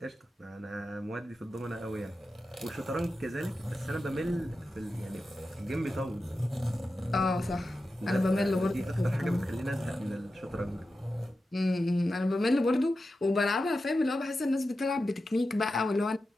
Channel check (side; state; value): both; normal; correlation 0.92